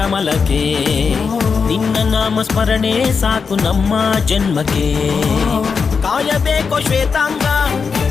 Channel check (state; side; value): quieter; right; 5.5 dB